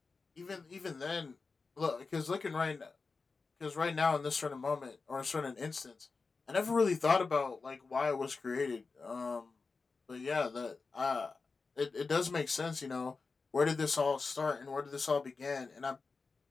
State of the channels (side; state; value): right; quieter; 4.3 dB